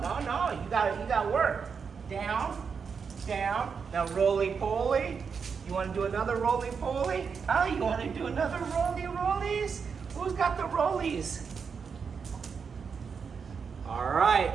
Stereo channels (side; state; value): left; quieter; 6.0 dB